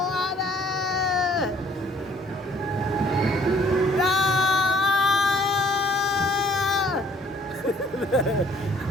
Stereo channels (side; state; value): both; normal; correlation 0.59